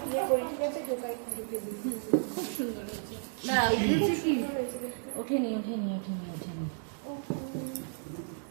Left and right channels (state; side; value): silent; left; digital silence